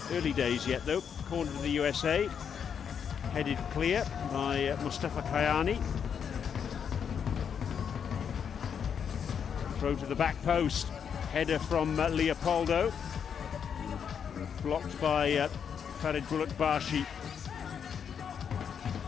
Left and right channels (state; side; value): quieter; right; 7.5 dB